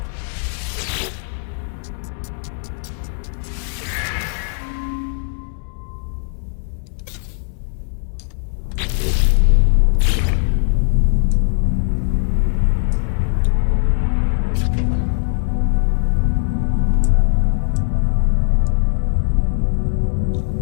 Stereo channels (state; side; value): silent; right; digital silence